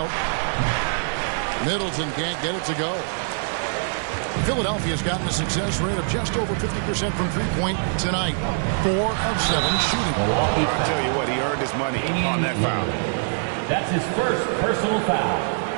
Middleton can't get it to go. Philadelphia's gotten a success rate of just over 50% from three-point tonight. 4 of 7 shooting. I'll tell you what, he earned his money on that foul. That's his first personal foul.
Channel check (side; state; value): left; silent; digital silence